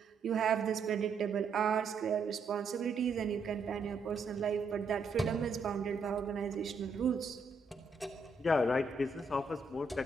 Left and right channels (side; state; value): left; quieter; 3.9 dB